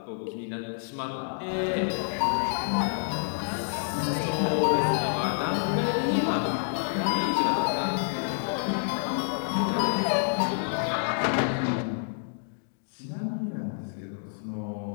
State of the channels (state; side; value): silent; right; digital silence